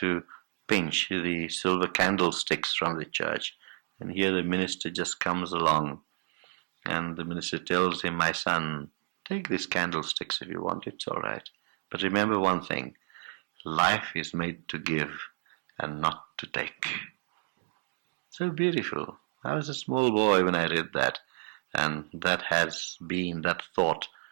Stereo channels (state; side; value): silent; left; 57 dB below the other